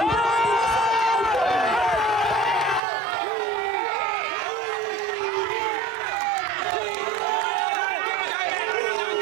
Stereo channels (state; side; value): drops out; left; at 2.8 s